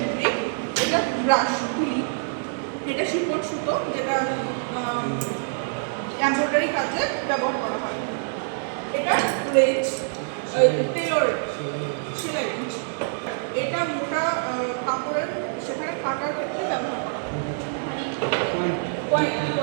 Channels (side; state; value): left; silent; digital silence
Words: এটা ব্রাশ তুলি, এটা শিকড় সুতো যেটা এমব্রয়ডারি কাজে ব্যবহার করা হয়। এটা রেঞ্জ, টেলর সেলাই রেঞ্জ। এটা মোটা কাপড়ের সেখানে কাটার ক্ষেত্রে ব্যবহার করা হয়।